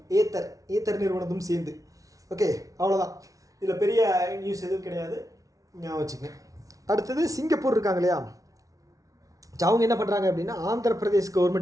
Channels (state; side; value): late; left; 0.17 ms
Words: ஏத்தர் நிறுவனத்தும் சேர்ந்து. ஓகே, அவ்வளோதான். இதில் பெரிய நியூஸ் எதுவும் கிடையாது, ஞாபகம் வச்சுங்க. அடுத்தது சிங்கப்பூர் இருக்காங்க இல்லையா, அவங்க என்ன பண்ணுறாங்க அப்படின்னா ஆந்திர பிரதேஷ்